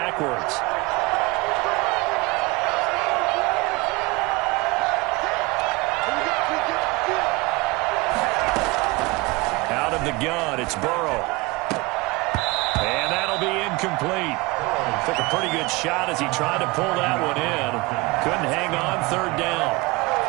Out of the gun, it's Burrow. And that'll be incomplete. Took a pretty good shot as he tried to pull that one in. Couldn't hang on 3rd down.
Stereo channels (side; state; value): left; quieter; 24.4 dB